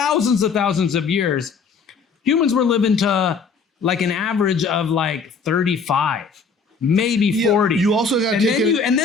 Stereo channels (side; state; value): right; quieter; 5.1 dB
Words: of years, humans were living to an average of 35. Maybe 40. You also got to take